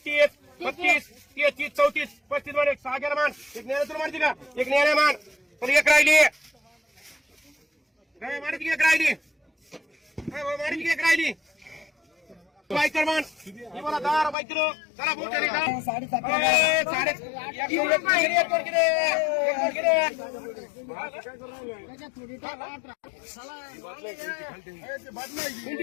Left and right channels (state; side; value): drops out; right; at 14.4 s